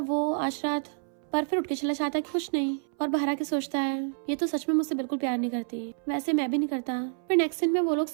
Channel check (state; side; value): silent; left; 59 dB below the other